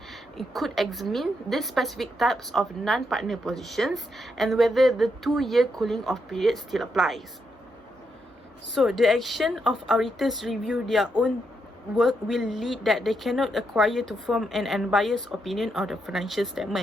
it could examine the specific types of non-partner positions and whether the 2-year cooling off period still applies. So the action of auditors review their own work will lead that they cannot acquire to form an unbiased opinion of the financial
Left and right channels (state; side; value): normal; both; correlation 0.80